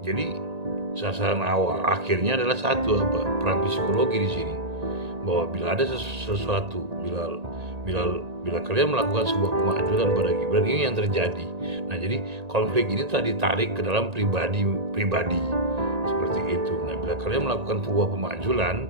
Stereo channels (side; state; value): left; late; 1.8 ms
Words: jadi sasaran awal akhirnya adalah satu, perang psikologi di sini, bahwa bila ada sesuatu, bila kalian melakukan sebuah kemajuan pada Gibran, ini yang terjadi. Nah, jadi konflik ini telah ditarik ke dalam pribadi seperti itu. Nah, bila kalian melakukan sebuah